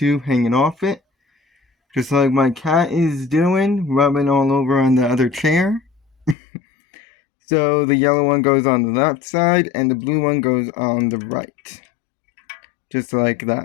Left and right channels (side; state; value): right; drops out; at 6.4 s